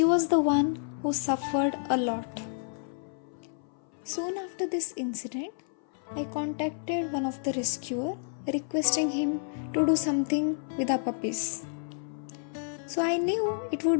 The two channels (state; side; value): silent; right; 56 dB below the other